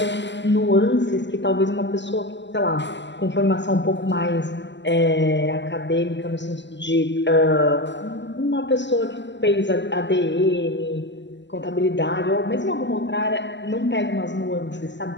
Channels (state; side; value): late; right; 0.52 ms